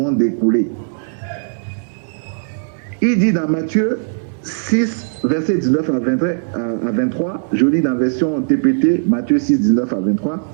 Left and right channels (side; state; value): left; silent; digital silence